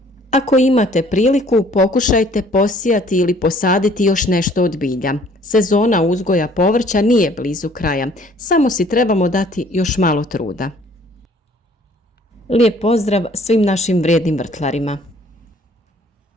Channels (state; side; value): normal; both; correlation 0.57